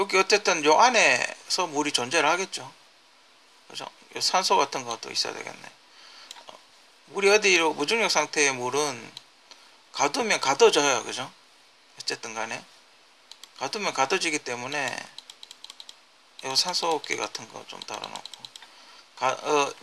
어쨌든 요 안에서 물이 존재를 하겠죠. 그죠? 요 산소 같은 것도 있어야 되겠네. 물이 어디로, 무중력 상태의 물은 가두면 가둬져요, 그죠? 어쨌든 간에 가두면 가둬지기 때문에 이 산소호흡기 같은 거 좀 달아놓고,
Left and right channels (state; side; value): identical; both; correlation 1.00